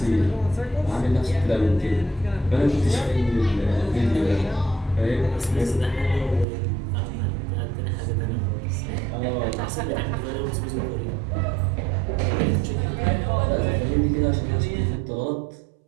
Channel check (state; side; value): drops out; left; at 6.5 s